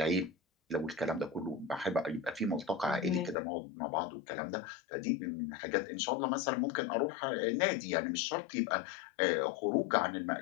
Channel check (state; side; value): drops out; right; at 3.4 s